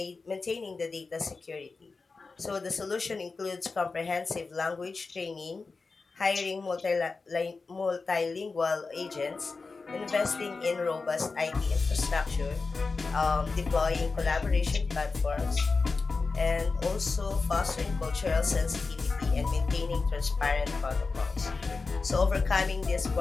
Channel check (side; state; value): right; quieter; 4.2 dB